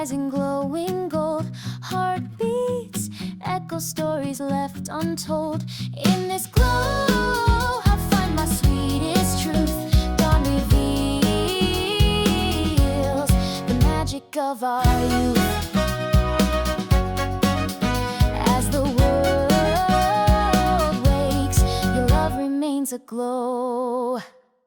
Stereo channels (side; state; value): both; identical; correlation 1.00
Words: in glowing gold. Heartbeats echo stories left untold. In this glow I find my sweetest truth. Dawn reveals the magic of our youth. As the world wakes, your love remains aglow.